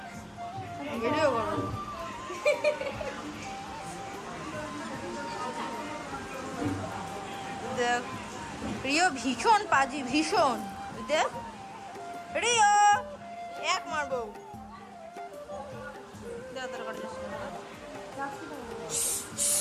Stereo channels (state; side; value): identical; both; correlation 1.00